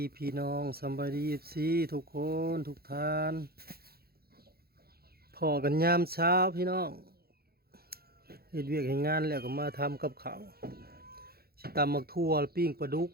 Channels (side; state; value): left; late; 0.45 ms